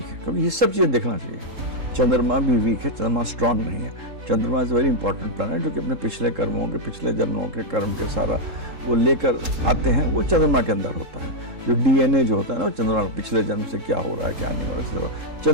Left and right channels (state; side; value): late; left; 3.7 ms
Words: है, क्योंकि ये सब चीज़ें देखना चाहिए। चंद्रमा भी वीक है, चंद्रमा स्ट्रांग नहीं है। चंद्रमा इज़ वेरी इंपॉर्टेंट प्लैनेट जो कि अपने पिछले कर्मों के, पिछले जन्मों के कर्म के सारा वो लेकर आते हैं, वो चंद्रमा के अंदर होता है। जो डीएनए जो होता है ना, वो चंद्रमा पिछले जन्म से क्या हो रहा है क्या नहीं हो रहा है।